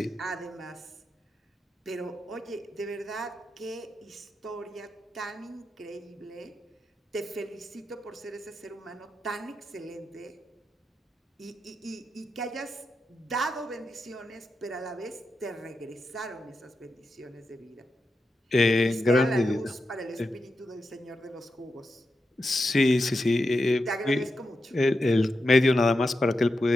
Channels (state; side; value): normal; both; correlation 0.88